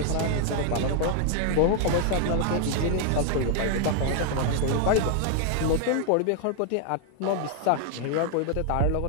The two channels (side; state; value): both; different; correlation 0.00